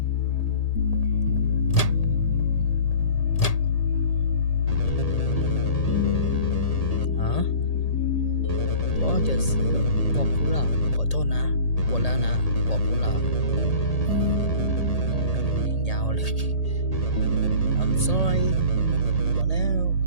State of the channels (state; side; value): late; right; 1.8 ms